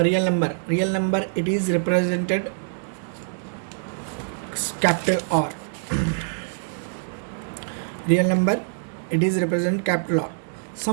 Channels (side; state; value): left; silent; digital silence